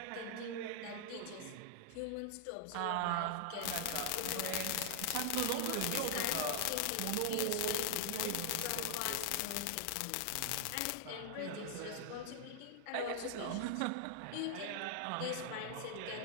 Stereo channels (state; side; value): different; both; correlation -0.01